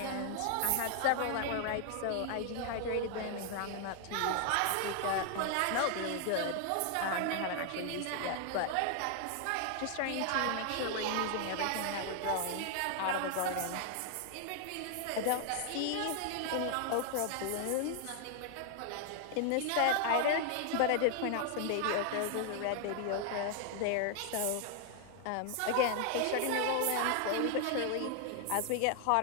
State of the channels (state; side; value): different; both; correlation 0.00